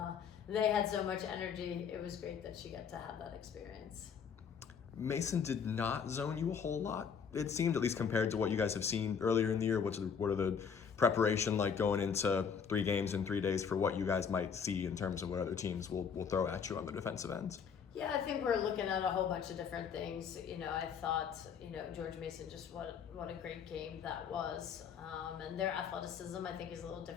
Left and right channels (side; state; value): right; quieter; 6.8 dB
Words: they had so much energy. It was great that she got to have that experience. Mason did not zone you a whole lot. It seemed, at least compared to what you guys have seen earlier in the year. What are the preparation like going into 3 games in 3 days for what you guys might see in terms of what other teams will throw at you on the defensive ends? Yeah, I think we're looking at a whole bunch of different things. I thought, George Mason, just what a great game that was. And their athleticism, I think, is a little